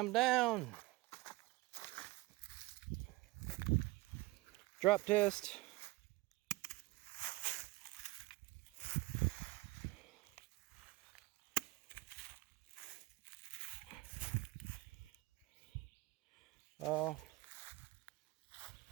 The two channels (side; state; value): left; quieter; 21.5 dB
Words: down. Drop test.